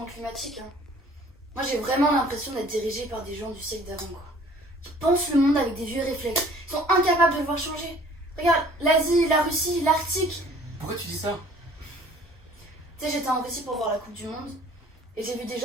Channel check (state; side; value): normal; both; correlation 0.53